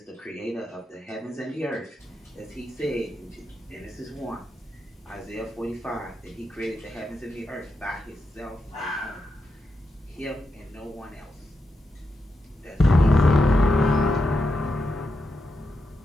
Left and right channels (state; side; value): normal; both; correlation 0.86